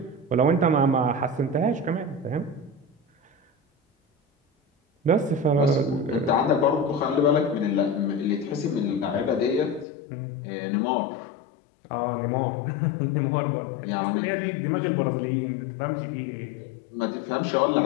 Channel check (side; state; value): right; drops out; at 9.9 s